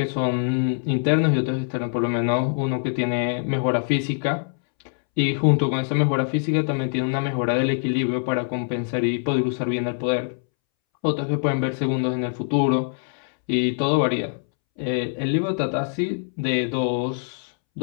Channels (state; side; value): silent; right; 63 dB below the other